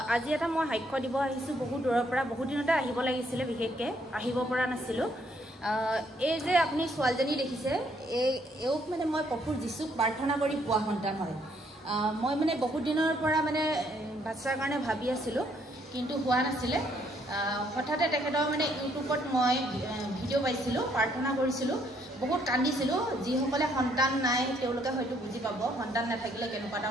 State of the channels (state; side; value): normal; both; correlation 0.69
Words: आज এটা মই সাক্ষ্য দিব আহিছো বহু দূৰৰ পৰা বহু দিনতে আহিব লাগিছিল বিশেষকৈ আহিব পৰা নাছিলো। এই যে আপুনি ছোৱালীজনী দেখিছে এওক মানে মই প্ৰভু যীশুক প্ৰাৰ্থনা কৰি পোৱা সন্তান হয়। মই মানে বহু দিনৰ পৰা মানে বাচ্চাৰ কাৰণে ভাবি আছিলো কিন্তু হোৱা নাছিলে। হঠাতে তেখেতৰ মানে ইউটিউবত মই ভিডিঅ' পাইছিলো, প্ৰাৰ্থনা কৰিছিলো, বহুত কান্দিছিলো। যিসকলে সন্তান নাই তেওঁলোকে হয়তো বুজি পাব সন্তান নাথাকিলে কেনেকুৱা এটা